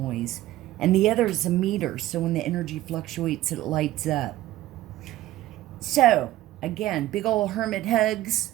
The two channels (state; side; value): quieter; left; 15.1 dB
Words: And the other is a meter, so when the energy fluctuates, it lights up. So, again, big old hermit hugs.